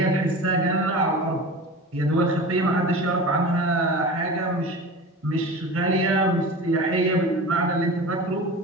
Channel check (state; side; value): normal; both; correlation 0.33